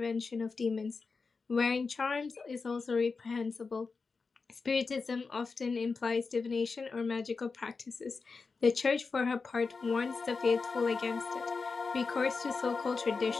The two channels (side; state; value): right; quieter; 4.6 dB